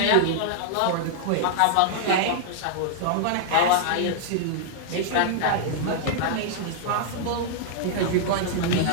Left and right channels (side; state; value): both; different; correlation -0.01